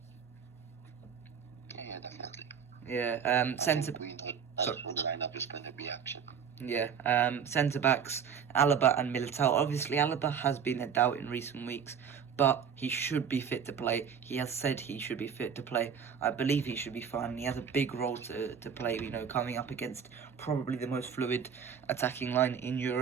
Yeah, definitely. Yeah, centre. We know that the lineup is going to be action. Yeah, centre backs, Alaba and Militao. Obviously, Alaba has been a doubt in recent weeks, but he should be fit to play. He has said he should be fit to play. I believe he should be fine. He has a big role to play, coming up against probably the most fluid attacking line in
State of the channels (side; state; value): left; quieter; 7.2 dB